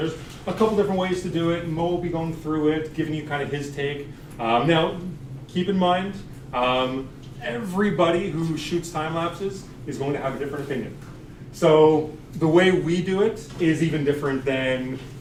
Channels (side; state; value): both; identical; correlation 1.00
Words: a couple different ways to do it. Mo will be going through it, giving you kind of his take. Now, keep in mind, everybody who shoots time lapses is going to have a different opinion. So the way we do it is even different than